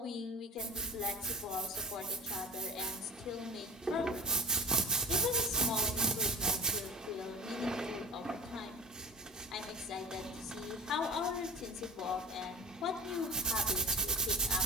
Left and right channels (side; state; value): both; normal; correlation 0.38